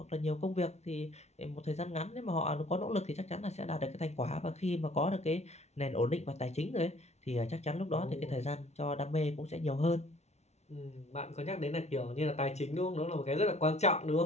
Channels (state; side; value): late; right; 0.32 ms